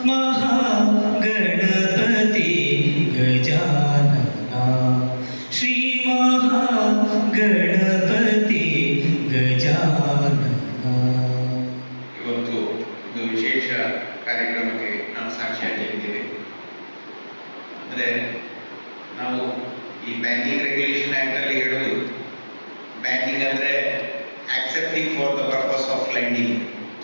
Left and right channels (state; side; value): inverted; both; correlation -1.00